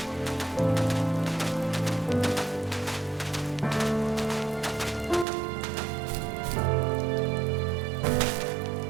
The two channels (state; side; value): drops out; left; at 5.2 s